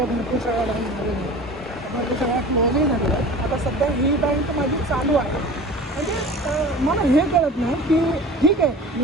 भरपूर सगळ्या बँक झालेल्या आहेत, भरपूर सगळ्या क्लोजही झालेल्या आहेत, आता सध्या ही बँक माझी चालू आहे. म्हणजे मला हे कळत नाही की ठीक आहे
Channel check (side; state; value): both; normal; correlation 0.39